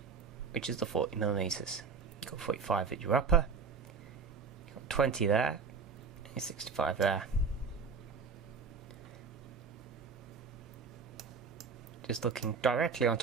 which is the 40mm. You've got 45 at your upper, you've got 20 there, and 65 there. Just looking directly on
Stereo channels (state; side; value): quieter; left; 5.2 dB